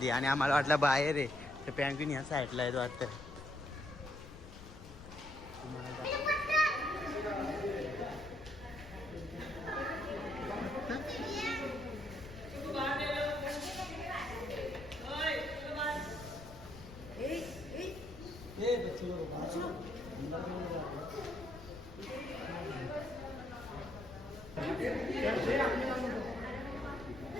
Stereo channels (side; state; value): left; noise; rumble, 15 dB below the sound